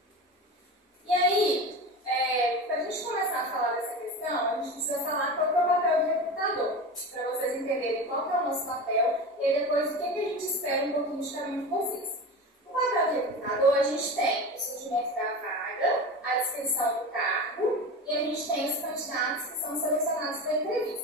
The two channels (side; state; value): both; normal; correlation 0.28